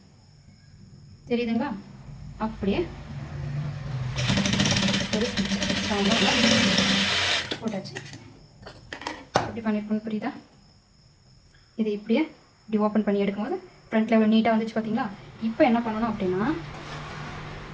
தெரியுதுங்களா, அப்படியே போட்டாச்சு. இப்படி பண்ணியிருக்கணும், புரியுதா? இது இப்படியே இப்படி ஓப்பன் பண்ணி எடுக்கும்போது ஃப்ரண்ட்டில் எவ்வளோ நீட்டாக வந்துச்சு பார்த்தீங்களா? இப்போ என்ன பண்ணணும் அப்படின்னா,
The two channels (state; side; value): identical; both; correlation 1.00